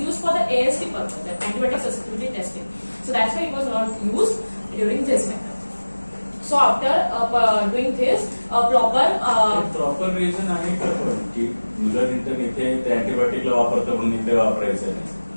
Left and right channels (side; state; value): both; inverted; correlation -1.00